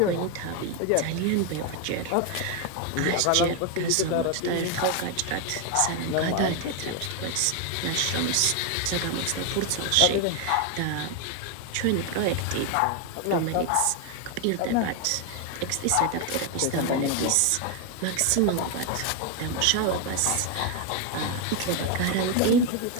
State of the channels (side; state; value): both; different; correlation 0.01